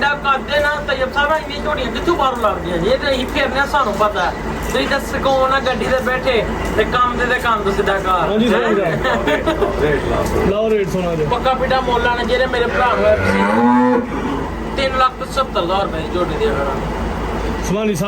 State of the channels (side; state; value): both; identical; correlation 1.00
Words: ਕਰਦੇ ਨਾ ਤੈਯਬ ਸਾਹਿਬ ਇੰਨੀ ਝੋੜੀਆਂ ਕਿੱਥੋਂ ਬਾਹਰੋਂ ਲੱਗਦੀਆਂ ਜੀ ਇਹ ਤੇ ਅਸੀਂ ਫੇਰਨੇ ਆ, ਸਾਨੂੰ ਪਤਾ ਹੈ ਤੁਸੀਂ ਤਾਂ ਸਕੋਨ ਆ ਗੱਡੀ ਤੇ ਬੈਠੇ ਤੇ ਕੰਮ ਤੇ ਕੰਮ ਤੋਂ ਸਿੱਧਾ ਘਰ ਹਾਂਜੀ ਸਹੀ ਗੱਲ ਰੇਟ ਲਾ ਲਾਓ ਰੇਟ ਸੋਨਾ ਦੇ ਪੱਕਾ ਪੀਟਾ ਮੁੱਲ ਆਣਾ ਜਿਹੜੇ ਮੇਰੇ ਭਰਾ ਨੂੰ 3,70,000 ਰੁਪਏ ਦੀ ਝੋਟੀ ਦੇ ਦੇਣਾ ਸੁਭਾਨੀ